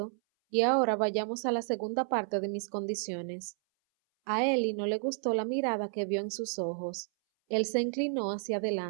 Y ahora vayamos a la segunda parte de mis condiciones. A Ellie no le gustó la mirada que vio en sus ojos. Él se inclinó hacia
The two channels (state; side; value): silent; left; 57 dB below the other